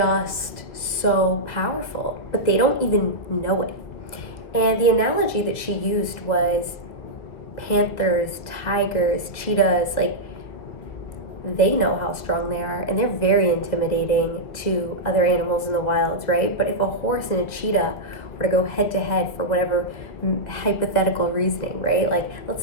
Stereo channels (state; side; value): late; right; 2.2 ms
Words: so powerful, but they don't even know it. And the analogy that she used was panthers, tigers, cheetahs. Like, they know how strong they are, and they're very intimidating to other animals in the wilds, right? But if a horse and a cheetah were to go head to head for whatever hypothetical reasoning, right? Like, let's